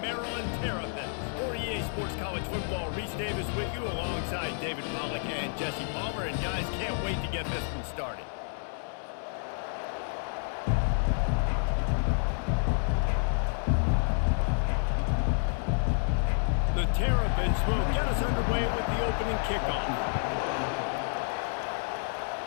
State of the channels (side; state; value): right; silent; 58 dB below the other